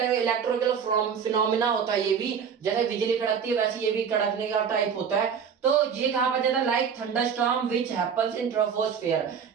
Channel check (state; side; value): quieter; left; 7.0 dB